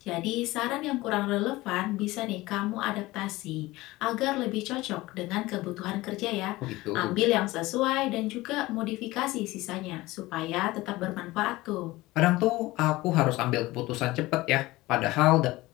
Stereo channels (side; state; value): right; quieter; 19.3 dB